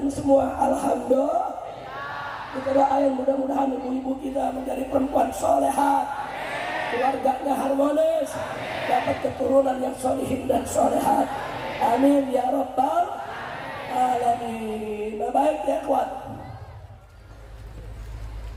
semua. Alhamdulillah. Kita doain mudah-mudahan ibu-ibu kita menjadi perempuan solehat, keluarganya harmonis, dapat keturunan yang solihin dan solehat. Amin ya rabbal alamin. Baik ya kuat.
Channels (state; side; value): identical; both; correlation 1.00